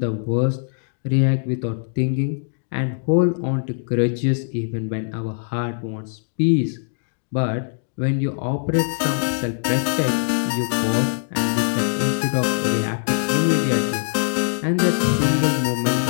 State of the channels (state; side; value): silent; right; digital silence